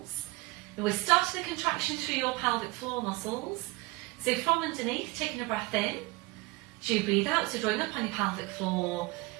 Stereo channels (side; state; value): left; quieter; 22.7 dB